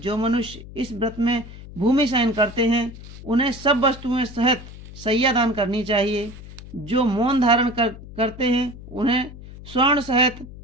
मनुष्य इस व्रत में भूमि शयन करते हैं उन्हें सब वस्तुएं सहित सैया दान करनी चाहिए। जो मौन धारण करते हैं उन्हें स्वर्ण सहित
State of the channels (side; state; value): left; noise; hum, 15 dB below the sound